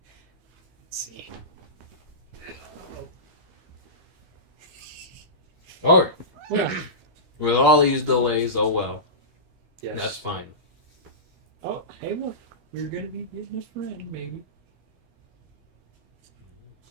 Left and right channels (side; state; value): left; late; 12 ms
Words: Let's see. Oh. Well. With all these delays, oh well. Yes. That's fine. Oh, hey, look. We're going to be getting a friend, maybe.